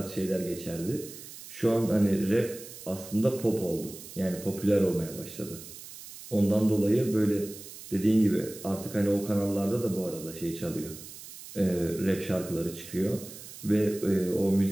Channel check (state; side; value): noise; right; hiss, 14 dB below the sound